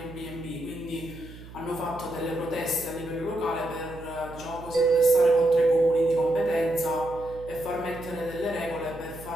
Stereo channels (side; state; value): right; noise; hum, 16 dB below the sound